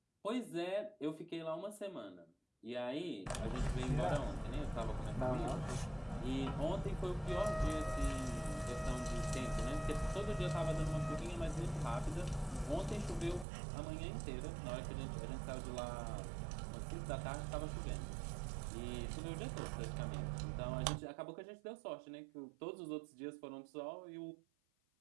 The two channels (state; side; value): drops out; left; at 13.5 s